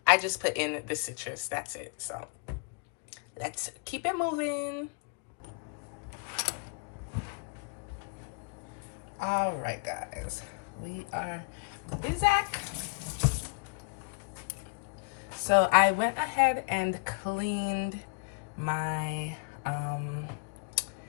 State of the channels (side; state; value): right; quieter; 36.5 dB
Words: I just put in the citrus, that's it. So let's keep it moving. All right, guys, we are busy. So I went ahead and cleaned my